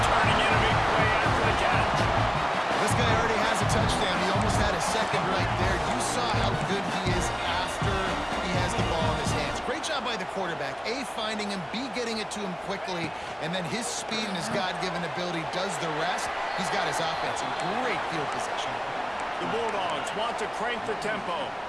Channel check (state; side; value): identical; both; correlation 1.00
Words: Touchdown. He almost had a second right there. You saw how good he is after he has the ball in his hands. Great job by the quarterback. A, finding him, B, getting it to him quickly, and then his speed and his God-given ability does the rest. He's got his offense in great field position. The Bulldogs want to crank the tempo.